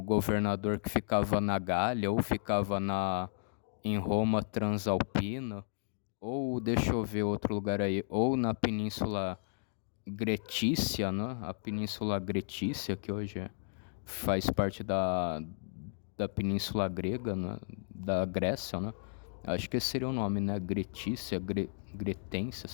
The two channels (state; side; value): silent; right; digital silence